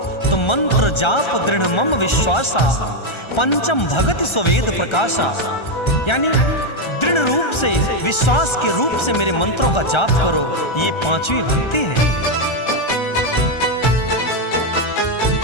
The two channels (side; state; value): right; late; 1.3 ms